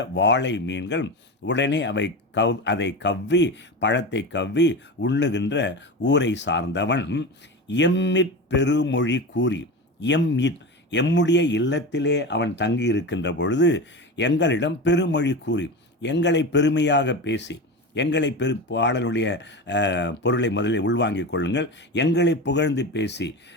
வாழை மீன்கள் உடனே அதை கவ்வி, பழத்தை கவ்வி உண்ணுகின்ற ஊரை சார்ந்தவன் எம்மிற் பெருமொழி கூறி, எம்முடைய இல்லத்திலே அவன் தங்கி இருக்கின்ற பொழுது எங்களிடம் பெருமொழி கூறி, எங்களை பெருமையாக பேசி, பாடலுடைய பொருளை முதலில் உள்வாங்கிக் கொள்ளுங்கள். எங்களை புகழ்ந்து பேசி,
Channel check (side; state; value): both; normal; correlation 0.25